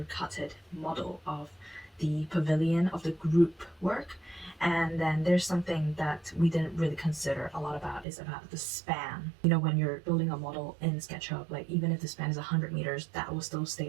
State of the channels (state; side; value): drops out; left; at 8.1 s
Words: cutted model of the pavilion, of the group work. And then there's something that we didn't really consider a lot about, is about the span. You know, when you're building a model in SketchUp, like even if the span is 100 meters, that will still stay